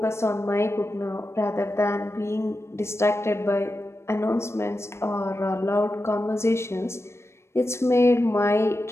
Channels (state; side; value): late; right; 0.13 ms